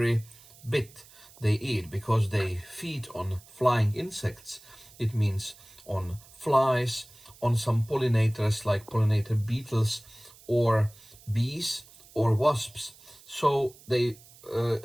bit they eat, because they feed on flying insects. It means on flies, on some pollinators like pollinator beetles or bees or wasps. So they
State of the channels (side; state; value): right; noise; hiss, 23 dB below the sound